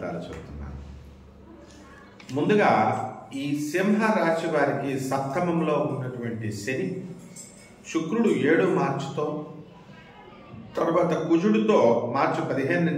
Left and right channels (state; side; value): identical; both; correlation 1.00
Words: చెబుతున్నాను. ముందుగా ఈ సింహరాశి వారికి సప్తమంలో ఉన్నటువంటి శని, శుక్రుడు 7 మార్చితో, తర్వాత కుజుడితో మార్చి 15